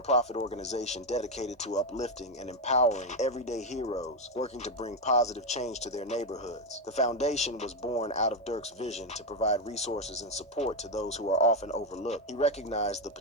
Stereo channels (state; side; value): normal; both; correlation 0.07